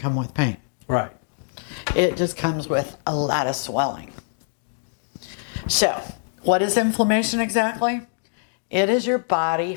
with pain. Right. It just comes with a lot of swelling. So, what is inflammation exactly? It is your body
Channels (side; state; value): right; silent; digital silence